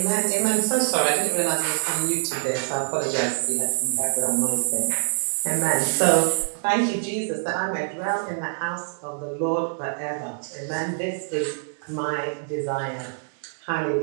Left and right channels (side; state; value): left; silent; digital silence